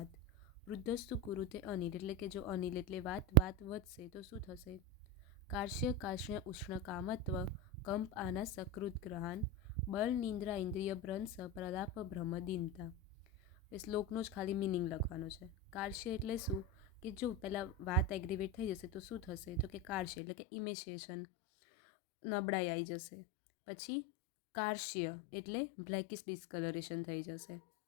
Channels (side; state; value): right; drops out; at 20.1 s